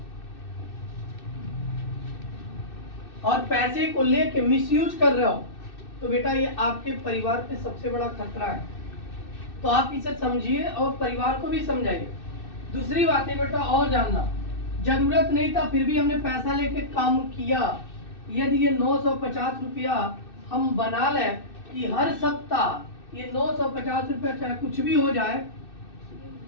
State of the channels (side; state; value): right; late; 2.6 ms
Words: और पैसे को लेके मिसयूज कर रहे हो तो बेटा ये आपके परिवार पे सबसे बड़ा खतरा है। तो आप इसे समझिए और परिवार को भी समझाइए। दूसरी बात है बेटा और जानना, जरूरत नहीं था फिर भी हमने पैसा लेके काम किया। यदि ये 950 रुपया हम बना लें कि हर सप्ताह ये 950 रुपया चाहे कुछ भी हो जाए